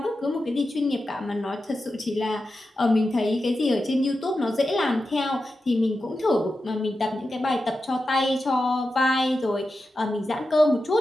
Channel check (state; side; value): normal; both; correlation 0.91